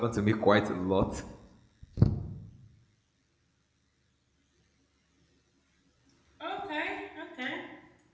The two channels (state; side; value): identical; both; correlation 1.00